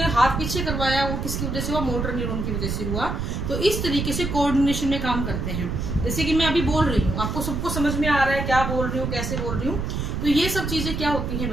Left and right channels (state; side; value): noise; right; rumble, 2 dB below the sound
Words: हाथ पीछे करवाया वो किसकी वजह से हुआ, मोटर न्यूरॉन की वजह से हुआ। तो इस तरीके से कोऑर्डिनेशन में काम करते हैं। जैसे कि मैं अभी बोल रही हूँ, आपको सबको समझ में आ रहा है क्या बोल रही हूँ, कैसे बोल रही हूँ। तो ये सब चीजें क्या होती हैं